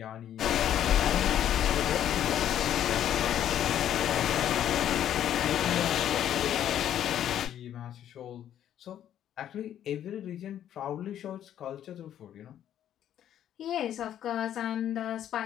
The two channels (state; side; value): quieter; right; 10.7 dB